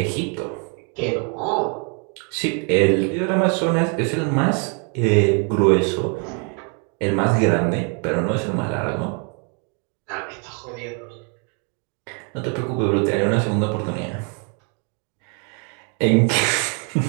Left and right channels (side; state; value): left; quieter; 35.9 dB